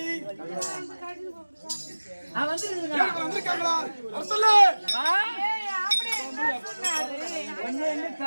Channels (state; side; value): inverted; both; correlation -1.00